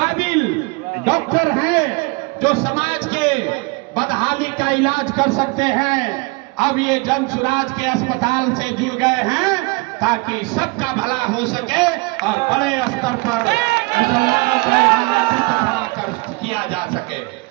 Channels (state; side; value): quieter; left; 26.3 dB